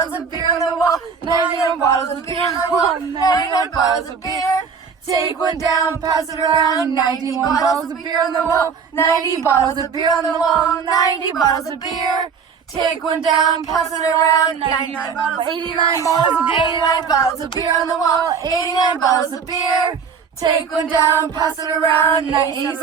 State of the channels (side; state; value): left; quieter; 6.1 dB